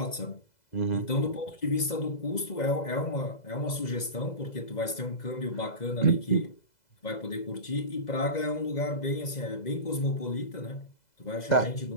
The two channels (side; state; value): right; late; 2.0 ms